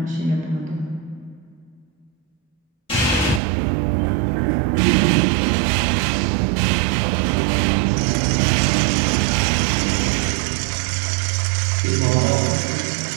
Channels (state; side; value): drops out; left; at 3.4 s